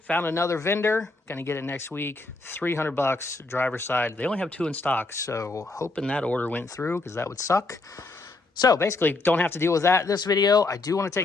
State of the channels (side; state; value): right; quieter; 3.3 dB